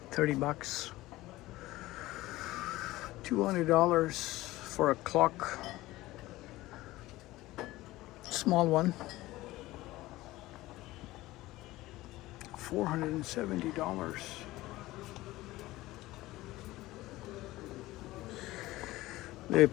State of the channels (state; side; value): quieter; right; 17.9 dB